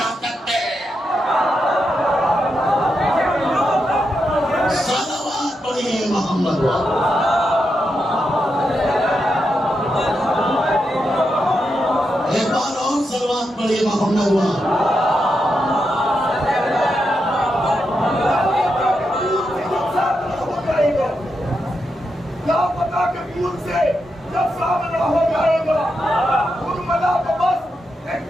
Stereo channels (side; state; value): both; normal; correlation 0.85